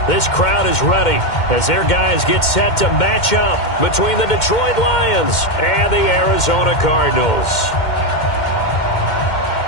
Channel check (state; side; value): late; right; 2.1 ms